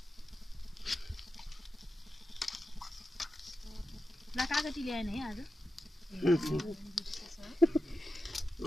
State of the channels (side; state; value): both; normal; correlation 0.90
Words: ल कागती ल्याएन है आज